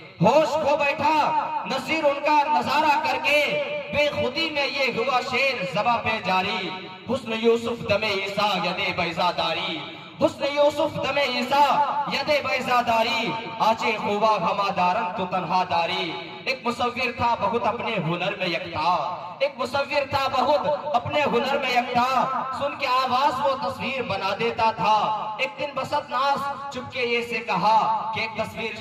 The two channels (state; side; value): identical; both; correlation 1.00